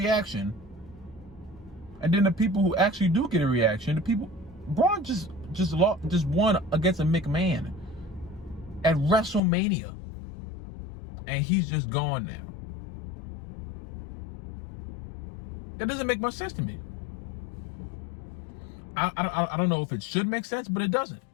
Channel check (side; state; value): right; drops out; at 9.4 s